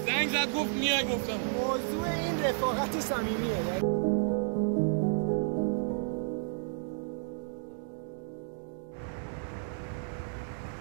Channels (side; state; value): left; silent; digital silence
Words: زنگ زد گفت میای، گفتم موضوع این رفاقت صمیمیه.